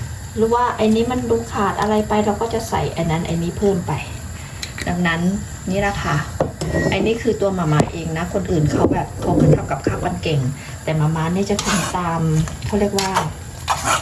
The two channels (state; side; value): identical; both; correlation 1.00